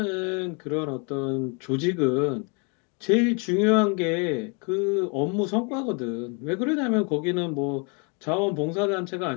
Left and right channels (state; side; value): quieter; right; 34.4 dB